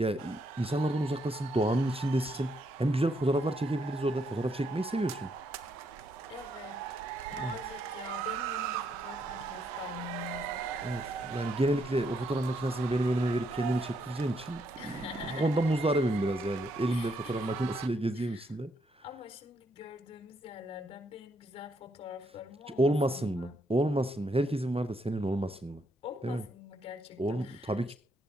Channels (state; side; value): normal; both; correlation 0.75